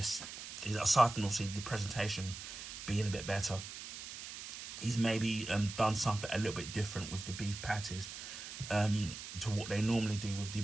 is, aside from obviously the presentation being a bit better, he's maybe done something a little bit different with the beef patties to what they normally do with the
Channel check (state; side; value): noise; right; hiss, 10 dB below the sound